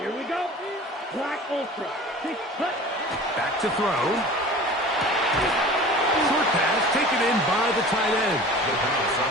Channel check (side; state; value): both; normal; correlation 0.40